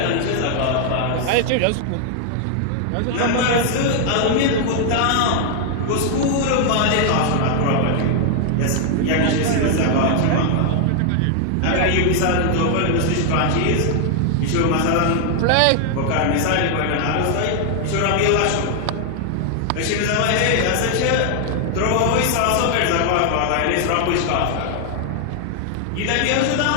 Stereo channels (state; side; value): different; both; correlation 0.00